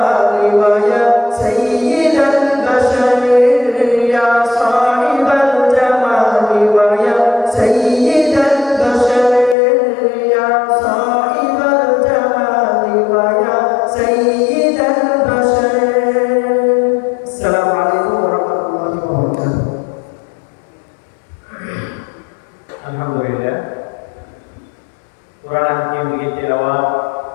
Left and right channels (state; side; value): drops out; right; at 9.6 s